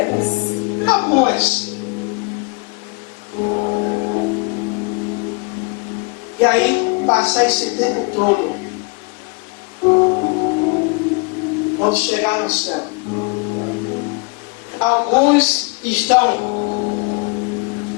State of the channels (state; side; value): quieter; right; 31.1 dB